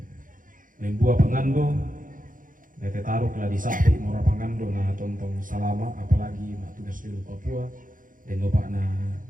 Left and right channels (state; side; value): late; left; 0.39 ms